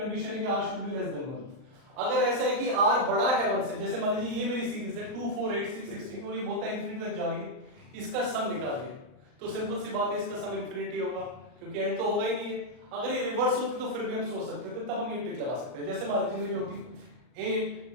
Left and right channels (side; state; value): left; late; 38 ms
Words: है कि r should be less than 1। अगर ऐसा है कि r बड़ा है 1 से, जैसे मान लीजिए ये मेरी सीरीज है 2, 4, 8, 6, 16, और ये बोलता है इंफिनिटी तक जा रही है, इसका सम निकालिए। तो सिंपल सी बात है, इसका सम इंफिनिटी होगा, क्योंकि एंड तो होगा ही नहीं है। अगर ये रिवर्स होती तो फिर भी हम सोच सकते थे, तो तब हम ये ट्रिक लगा सकते हैं। जैसे मान लीजिए मेरी होती 8,